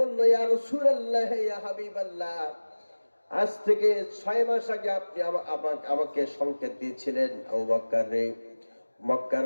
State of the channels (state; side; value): inverted; both; correlation -1.00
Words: ইয়া রাসূলুল্লাহ, ইয়া হাবিবাল্লাহ, আজ থেকে 6 মাস আগে আপনি আমাকে সংকেত দিয়েছিলেন, আবু বকর রে,